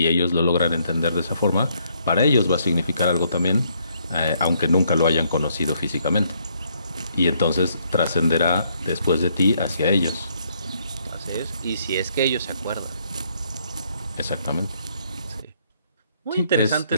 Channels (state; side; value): inverted; both; correlation -0.70